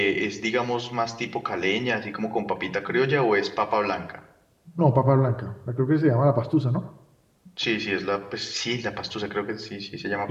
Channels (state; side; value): identical; both; correlation 1.00